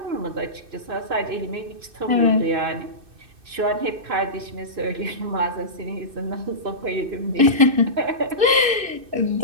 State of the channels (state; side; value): late; left; 2.6 ms